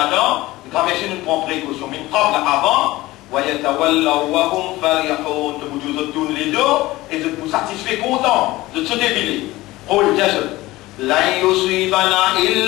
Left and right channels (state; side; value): quieter; right; 18.6 dB